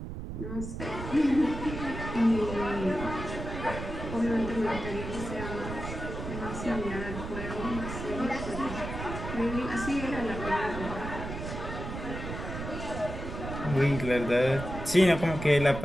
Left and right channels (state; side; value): noise; right; rumble, 7 dB below the sound